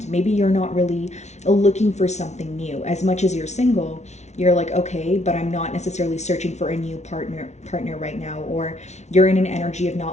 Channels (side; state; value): right; late; 0.32 ms